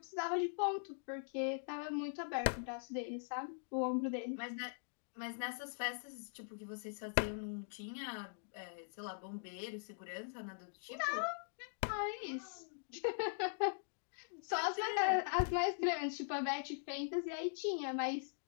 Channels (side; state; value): right; silent; digital silence